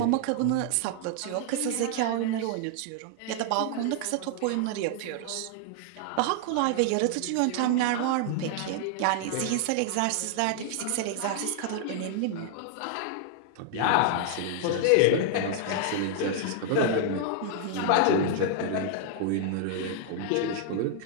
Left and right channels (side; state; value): both; different; correlation 0.00